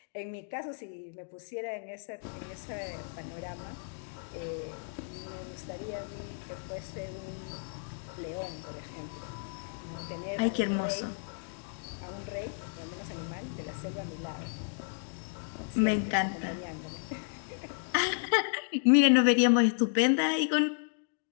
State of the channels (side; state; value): right; silent; digital silence